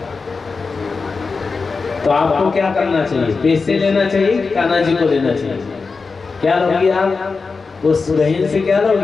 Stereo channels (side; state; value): right; quieter; 4.5 dB